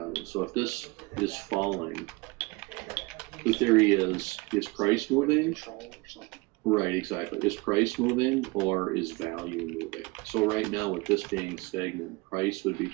So if this is falling, the theory is price moving? Control or something. Right, exactly. Is price moving or is value moving? So right now with this being stagnant, price would be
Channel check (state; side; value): quieter; left; 25.0 dB